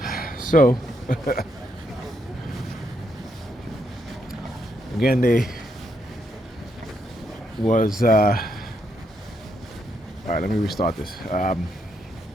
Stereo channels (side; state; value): both; normal; correlation 0.78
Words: So, again, they was, alright, let me restart this. Let's